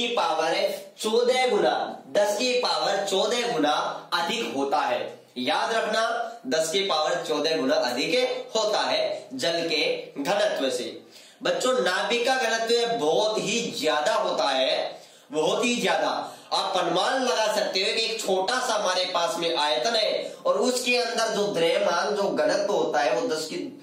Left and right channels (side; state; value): both; identical; correlation 1.00